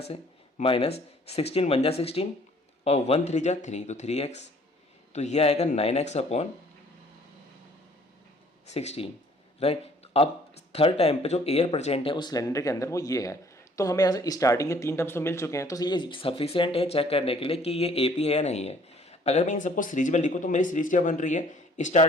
से, माइनस 16 1 जा 16 और 1 3 जा 3, तो 3x, तो ये आएगा 9x/16, राइट। अब थर्ड टाइम पे जो एयर प्रेजेंट है उस सिलेंडर के अंदर वो ये है। तो हमें यहाँ से स्टार्टिंग के 3 टर्म्स तो मिल चुके हैं, तो ये सफिशिएंट है चेक करने के लिए कि ये एपी है या नहीं है। अगर मैं इन सबको सीरीज में लिखूँ तो मेरी सीरीज क्या बन रही है,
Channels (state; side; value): normal; both; correlation 0.58